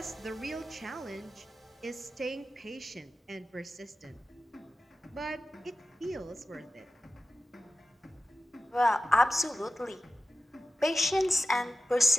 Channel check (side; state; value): both; normal; correlation 0.94